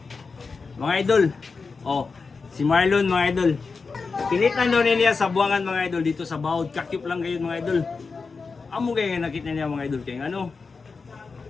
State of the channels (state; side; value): quieter; right; 4.6 dB